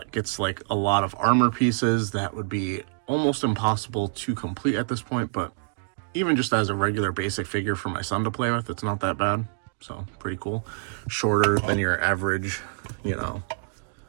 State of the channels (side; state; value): left; silent; digital silence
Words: gets like a lot of armor pieces that would be almost impossible to complete at this point, but even just as a regular basic figure for my son to play with, it's not that bad. So pretty cool. Shorter than your average, you know,